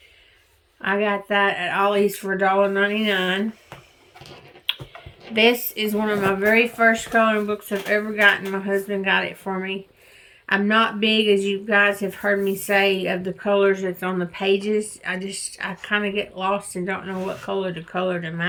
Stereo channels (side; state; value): both; identical; correlation 1.00